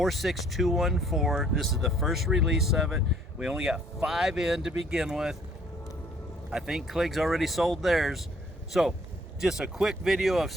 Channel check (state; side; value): normal; both; correlation 0.61